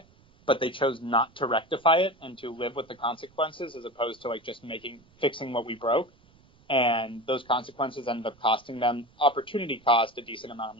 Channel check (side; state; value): right; noise; rumble, 30 dB below the sound